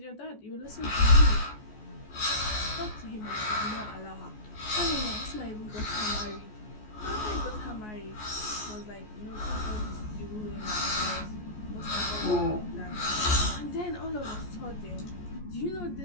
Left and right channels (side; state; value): right; late; 14 ms